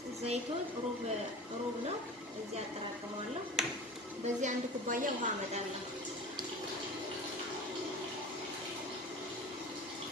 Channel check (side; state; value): both; normal; correlation 0.36